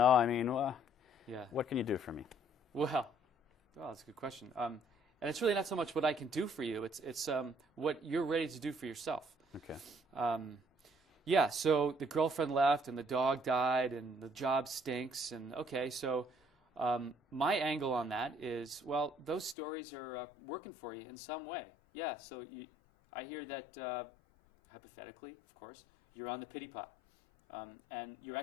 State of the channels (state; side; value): drops out; right; at 19.6 s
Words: I mean, Yeah. what can you do for me? Well, that's a good question. And it's really not so much what I can do for you. It's what you're ready to do for yourself. Okay. Yeah, so the girlfriend left and the dog died and the job stinks. And okay, so my angle on that is, well, those stories are working for you in some way. Yeah, so I hear that, hypothetically, of course, you're on the pity pot. And you're